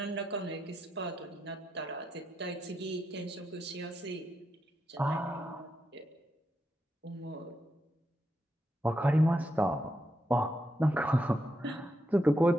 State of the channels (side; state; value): both; normal; correlation 0.84